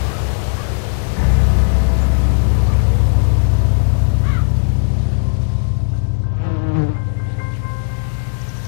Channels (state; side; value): silent; right; digital silence